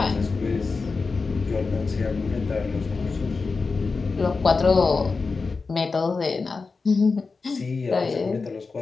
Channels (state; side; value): quieter; right; 4.4 dB